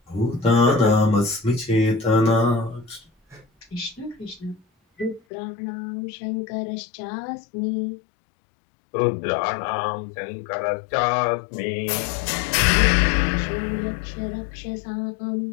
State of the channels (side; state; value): right; drops out; at 5.2 s